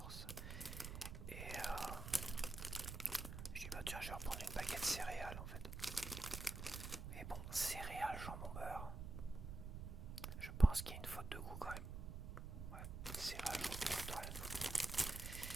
je vais reprendre une baguette céréales en fait. Mais bon, céréales, jambon beurre. Je pense qu'il y a une faute de goût quand même. Ouais, céréales, jambon beurre, une faute.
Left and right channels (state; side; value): noise; right; rumble, 6 dB below the sound